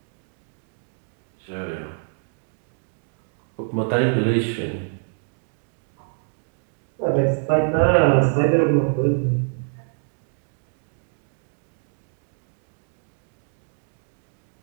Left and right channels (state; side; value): silent; left; 60 dB below the other